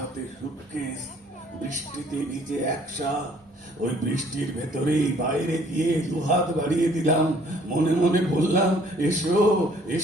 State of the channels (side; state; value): both; normal; correlation 0.59